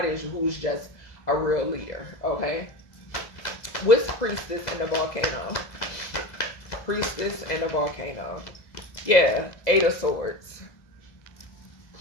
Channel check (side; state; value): right; late; 2.0 ms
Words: who's just a real leader. Okay, what's Priestess in the volcano? Priestess in the volcano. Yeah, 8 of Swords.